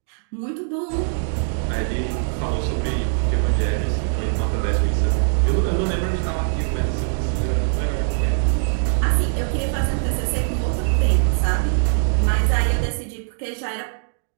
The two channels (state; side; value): silent; left; digital silence